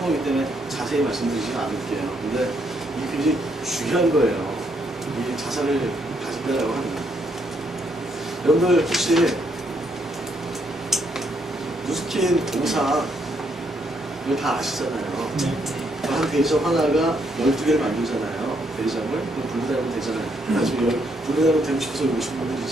거기 때문에 자세히 말씀드리지는 않을게요. 근데 이게 굉장히 중요한 거예요. 이 자산을 가진다라고 하는 거. 여러분들 혹시 누스킨 동상 이거 다 아시잖아요. 한 대리점 하나가 12개를 만들잖아요. 대리점을. 그럼 분리되면 되잖아요. 나중에 분리되면 되고 싶어서 오신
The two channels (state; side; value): normal; both; correlation 0.74